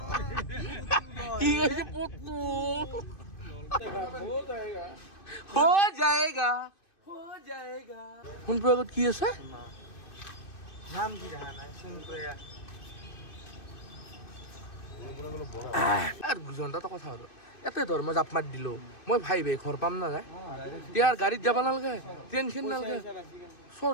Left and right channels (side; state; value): right; late; 2.6 ms